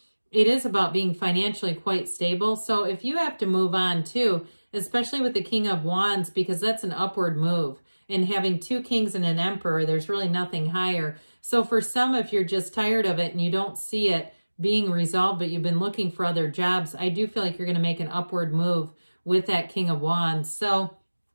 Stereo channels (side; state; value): both; inverted; correlation -1.00